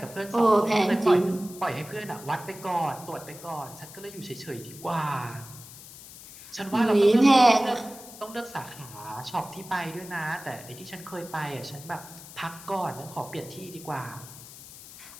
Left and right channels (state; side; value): noise; left; hiss, 16 dB below the sound